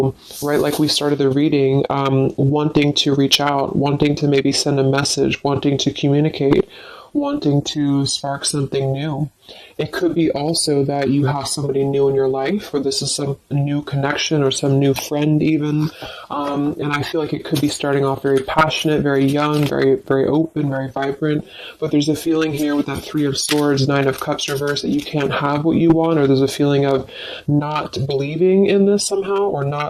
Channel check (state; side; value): identical; both; correlation 1.00